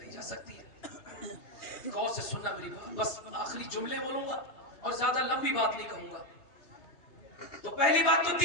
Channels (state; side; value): late; right; 3.3 ms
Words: جا سکتی ہے. غور سے سننا میری بات, بس آخری جملے بولوں گا اور زیادہ لمبی بات نہیں کہوں گا. تو پہلی بات تو